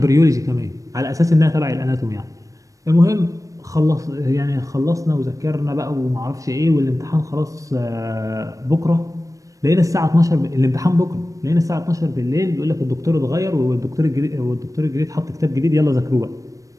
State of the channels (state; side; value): late; left; 0.16 ms